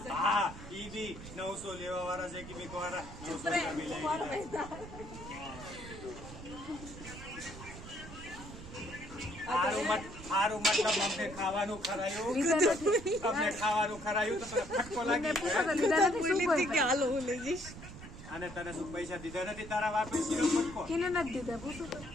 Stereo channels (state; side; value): noise; right; rumble, 13 dB below the sound